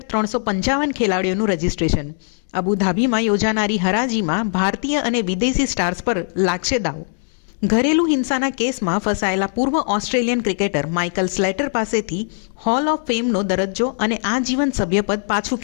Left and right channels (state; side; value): silent; right; 66 dB below the other